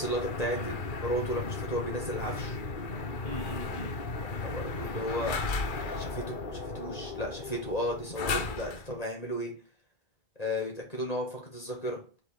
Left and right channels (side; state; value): right; late; 2.3 ms